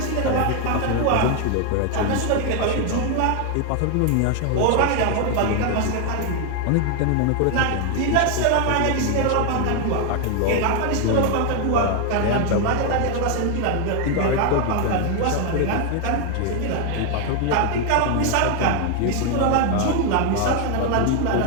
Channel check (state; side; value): different; both; correlation 0.01